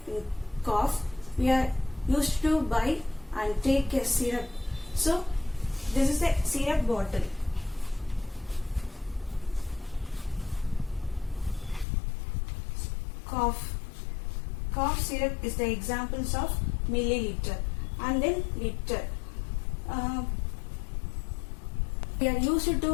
cough. We are used to buy and take a syrup. So this is the syrup bottle. Cough syrup is the examples of milliliter, and then liter. We are used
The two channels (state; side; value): drops out; right; at 11.9 s